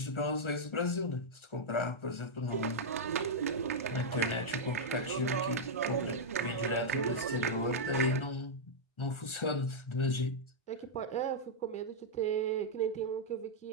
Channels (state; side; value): late; right; 1.4 ms